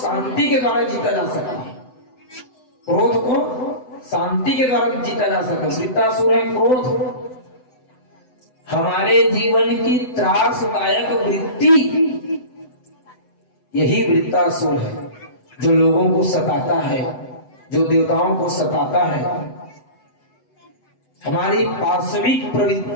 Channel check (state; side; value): late; right; 7.9 ms